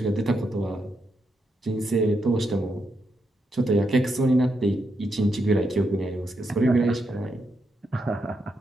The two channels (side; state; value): both; normal; correlation 0.82